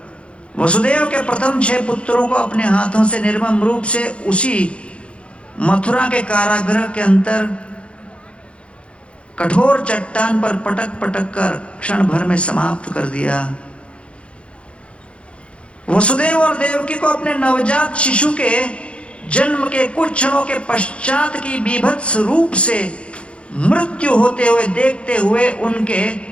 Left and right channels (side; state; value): right; late; 0.059 ms